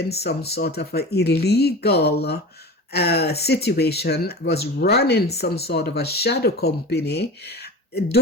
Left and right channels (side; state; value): both; normal; correlation 0.33